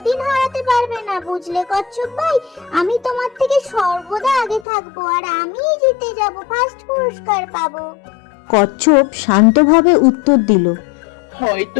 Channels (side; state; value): right; drops out; at 4.7 s